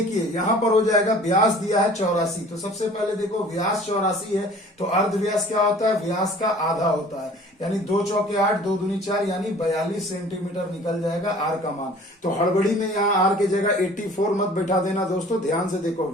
यहां पर हो जाएगा, व्यास दिया है 84, तो सबसे पहले देखो व्यास 84 है तो अर्ध व्यास क्या होता है, व्यास का आधा होता है, यानी 2 चौके 8, 2 दूनी 4, यानी 42 सेंटीमीटर निकल जाएगा आर का मान। तो हड़बड़ी में यहाँ आर की जगह 84 मत बैठा देना दोस्तों, ध्यान से देखो,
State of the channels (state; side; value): normal; both; correlation 0.48